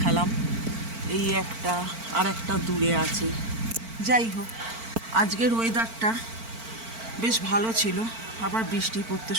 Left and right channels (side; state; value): left; late; 4.5 ms